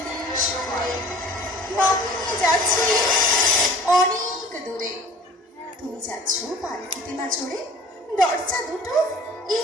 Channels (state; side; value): normal; both; correlation 0.47